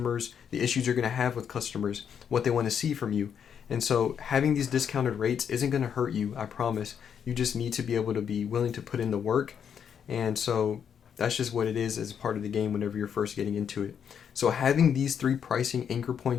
issues you're going to have with customers, what they want to see from you. And so having these discounted rates isn't going to hurt you, I promise. You just need to be able to be willing to put in the work. And so that's just what it is as part of the game whenever you're first getting into it. So having these 3 pricing anchor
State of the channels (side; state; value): right; quieter; 7.9 dB